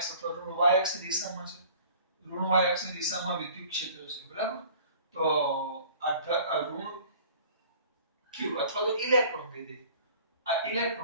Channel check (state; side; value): inverted; both; correlation -0.49